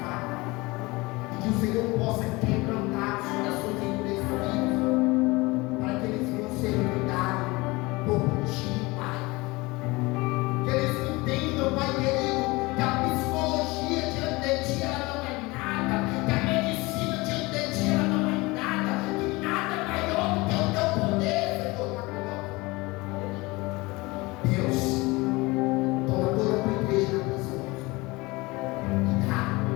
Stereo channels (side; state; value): right; quieter; 23.1 dB